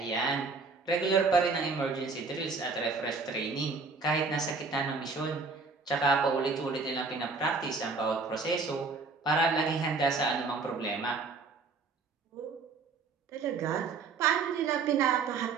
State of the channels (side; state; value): left; quieter; 4.4 dB